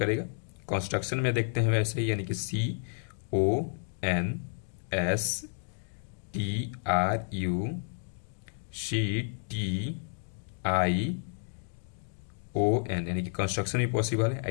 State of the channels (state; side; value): silent; right; digital silence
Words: कंस्ट्रक्शन में देखते हैं वैसे ही, यानी कि CONSTRUCTION यानी कि कंस्ट्रक्शन भी पॉसिबल